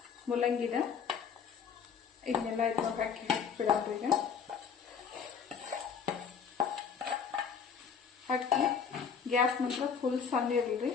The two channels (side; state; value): right; quieter; 6.7 dB